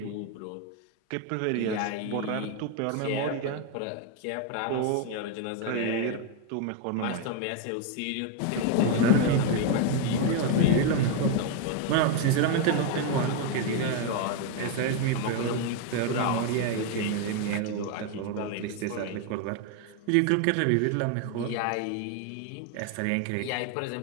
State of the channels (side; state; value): both; different; correlation 0.01